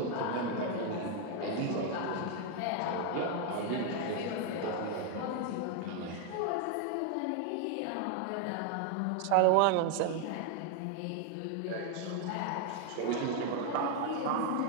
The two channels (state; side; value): different; both; correlation 0.01